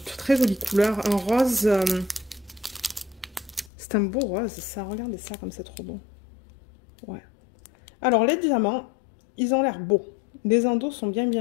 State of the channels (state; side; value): drops out; right; at 3.7 s